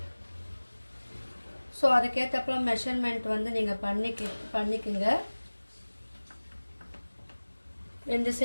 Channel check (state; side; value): inverted; both; correlation -1.00